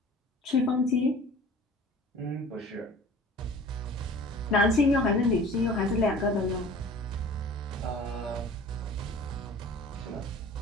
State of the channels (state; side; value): normal; both; correlation 0.44